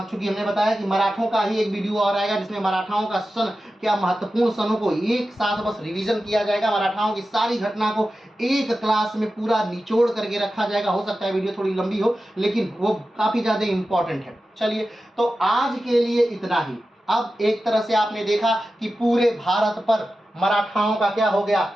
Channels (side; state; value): both; normal; correlation 0.93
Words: हमने बताया कि मराठों का ही एक वीडियो और आएगा जिसमें मराठाओं का सन, क्या महत्वपूर्ण सनों को एक साथ बस रिवीजन किया जाएगा, मराठाओं की सारी घटना को एक क्लास में पूरा निचोड़ करके रखा जाएगा। हो सकता है वीडियो थोड़ी लंबी हो लेकिन वो काफी ज्यादा इंपॉर्टेंट है। चलिए, तो आज के लिए इतना ही। अब एक तरह से आपने देखा कि पूरे भारत पर मराठाओं का क्या हो गया,